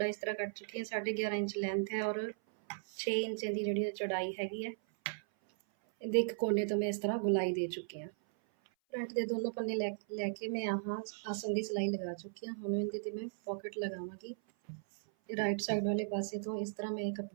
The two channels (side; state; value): left; silent; 53 dB below the other